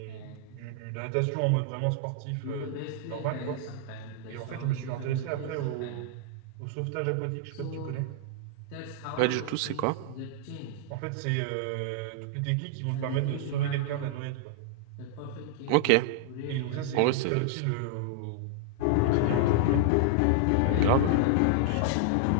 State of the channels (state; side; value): different; both; correlation -0.01